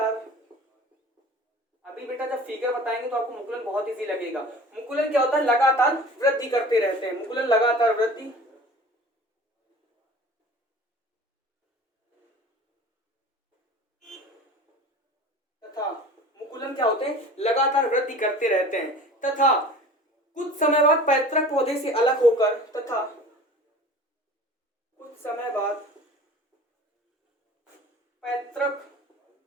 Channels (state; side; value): normal; both; correlation 0.41